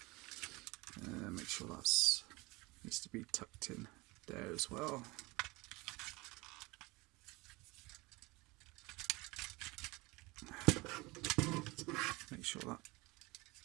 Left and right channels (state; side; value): quieter; left; 23.5 dB